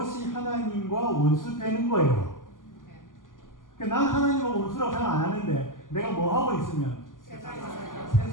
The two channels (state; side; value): late; right; 0.89 ms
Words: 하나님과 원수되는 거예요. 그러니까 난 하나님과 원수라고 생각 안 하는데 내가 뭐 하고 있으면